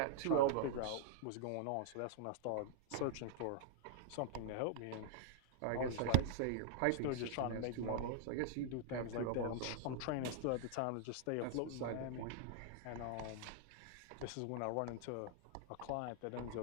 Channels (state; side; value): different; both; correlation -0.01